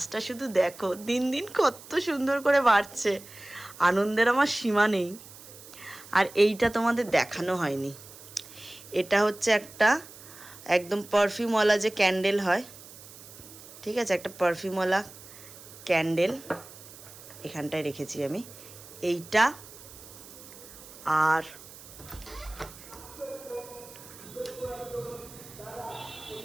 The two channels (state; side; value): noise; right; hiss, 18 dB below the sound